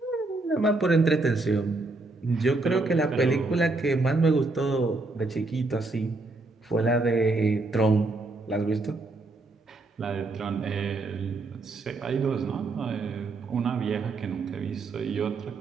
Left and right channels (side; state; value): left; quieter; 3.3 dB